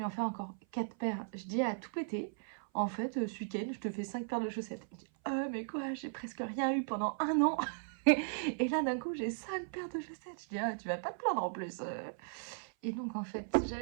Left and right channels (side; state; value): left; silent; 53 dB below the other